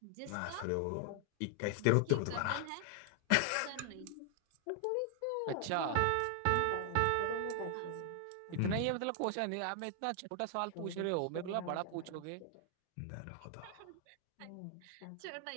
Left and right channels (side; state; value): both; different; correlation 0.00